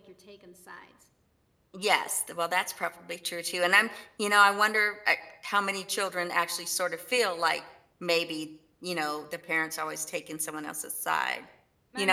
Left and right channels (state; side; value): identical; both; correlation 1.00